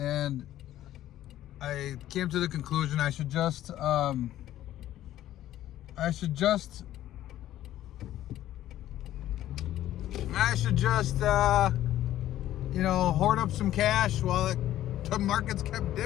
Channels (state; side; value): quieter; right; 13.1 dB